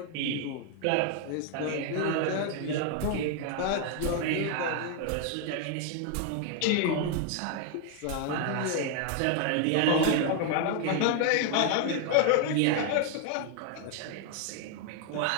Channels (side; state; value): both; different; correlation 0.00